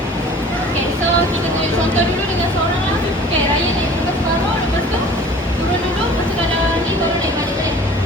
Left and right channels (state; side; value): normal; both; correlation 0.46